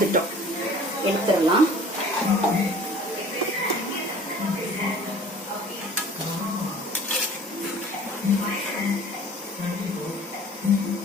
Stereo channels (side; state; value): both; normal; correlation 0.47